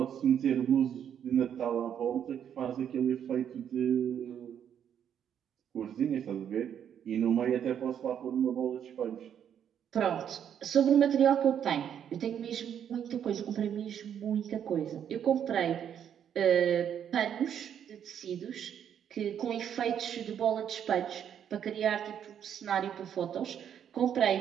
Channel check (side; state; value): left; quieter; 9.0 dB